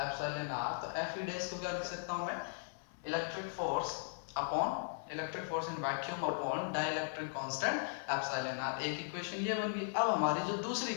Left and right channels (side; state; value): right; silent; 52 dB below the other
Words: epsilon R. तो एफ ई डैश को क्या लिख सकता हूं मैं, electric force in vacuum upon dielectric constant epsilon R. एक इक्वेशन ये बन गई। अब हमारी जो दूसरी